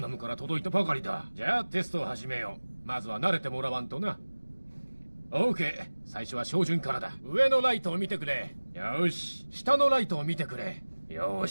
なのから届いたばかりだ。じゃあテストを始めよう。まずは慣れてもらわんとな。OK、最初は照準からだ。上のライトを見てくれ。よし、下のライトを見てくれ。よ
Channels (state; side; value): inverted; both; correlation -1.00